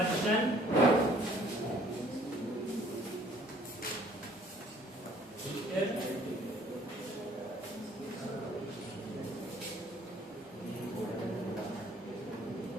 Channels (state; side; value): normal; both; correlation 0.58